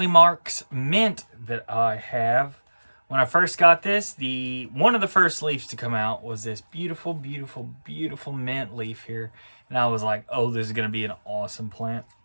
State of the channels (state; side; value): inverted; both; correlation -1.00